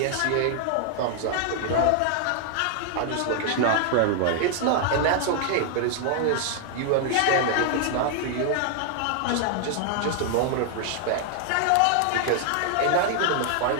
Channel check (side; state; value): both; different; correlation 0.00